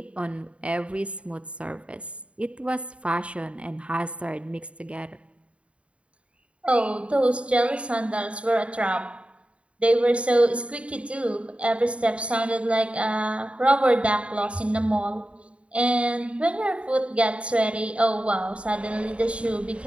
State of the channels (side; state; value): left; late; 0.061 ms